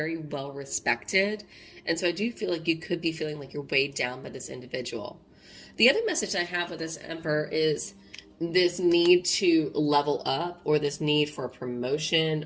well respected, and so I do feel like you could be feeling like you're weighed down by this individual. The other message I have with this Emperor is this need to level up, or this need for a promotion,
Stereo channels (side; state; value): both; identical; correlation 1.00